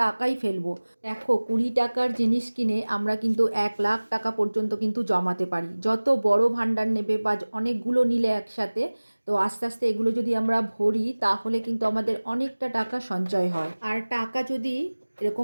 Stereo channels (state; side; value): inverted; both; correlation -1.00